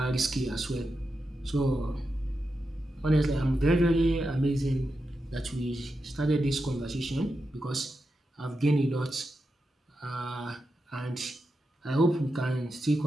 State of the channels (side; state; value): both; normal; correlation 0.88